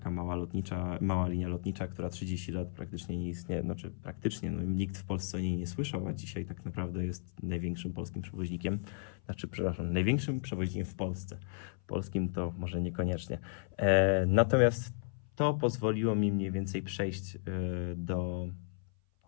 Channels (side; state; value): right; silent; 55 dB below the other